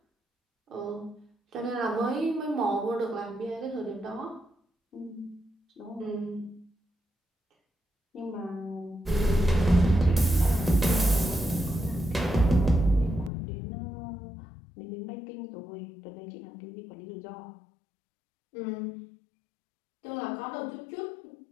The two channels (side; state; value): right; drops out; at 13.3 s